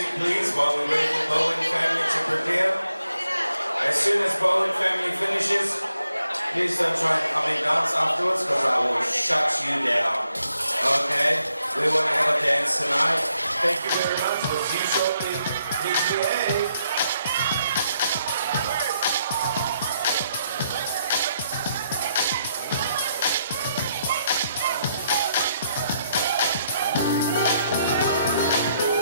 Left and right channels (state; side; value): inverted; both; correlation -0.77